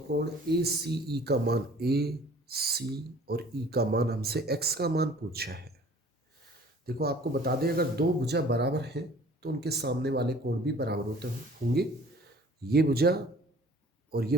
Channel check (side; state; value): both; normal; correlation 0.51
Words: ACE का मान, AC और E का मान, हमसे x का मान पूछा है। देखो आपको बता दें, अगर दो भुजा बराबर हैं तो उनके सामने वाले कोण भी बराबर होते होंगे। ये भुजा और ये